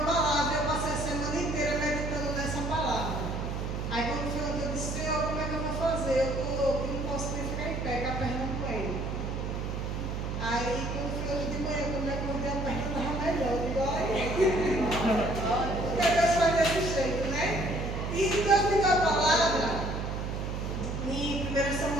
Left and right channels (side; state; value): right; noise; hum, 3 dB below the sound